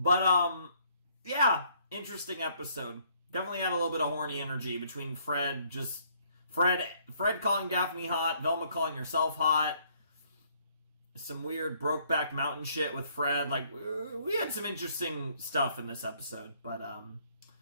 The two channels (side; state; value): both; inverted; correlation -0.65